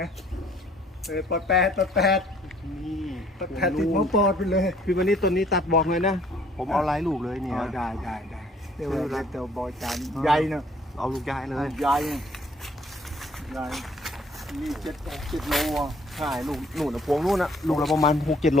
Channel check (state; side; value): normal; both; correlation 0.59